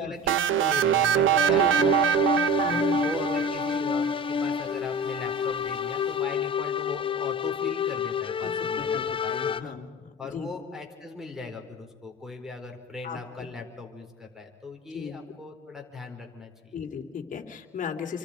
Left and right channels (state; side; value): normal; both; correlation 0.34